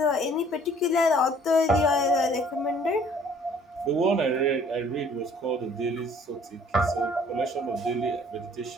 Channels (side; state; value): both; normal; correlation 0.56